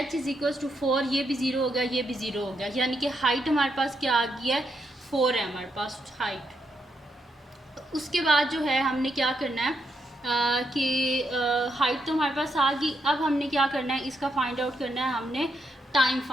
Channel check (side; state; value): both; normal; correlation 0.80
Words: = 4, ये भी 0 हो गया, ये भी 0 हो गया, यानी कि हाइट हमारे पास क्या आ गई है 4 है हमारे पास हाइट। उसके बाद जो है हमने क्या करना है कि हाइट तो हमारे पास आ गई। अब हमने क्या करना है, इसका फाइंड आउट करना है, हमने टाइम